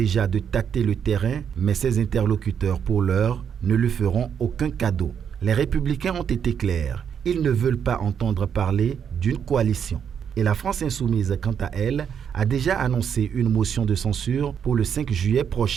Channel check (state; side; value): quieter; left; 7.9 dB